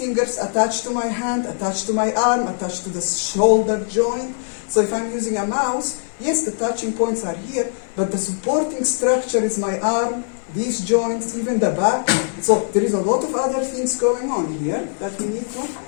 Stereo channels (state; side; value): silent; right; digital silence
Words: attached to my hand, attached to my arm, attached to the shoulder joint. So if I'm using a mouse, yes, the touching points are here, but the supporting structure is my arm, these joints, even the back. So there is a lot of other things going on here that we need to.